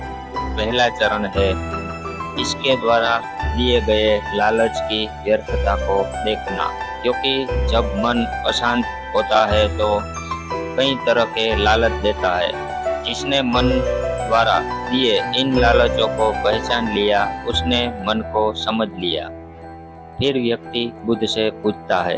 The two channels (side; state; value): both; identical; correlation 1.00